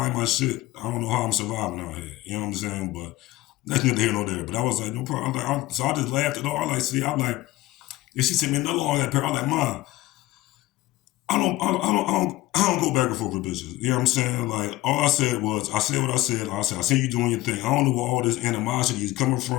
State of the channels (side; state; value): right; quieter; 17.5 dB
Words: my shit. I don't know how I'm surviving out here. You know what I'm saying? But that's neither here nor there. But I was like, no problem. So I just laughed at all. I'm like, and she sent me another one that pair. I'm like, Ma, I don't go back and forth with bitches. You know what I'm saying? Like, all I said was, I said what I said. I see you doing your thing. I don't know where all this animosity is coming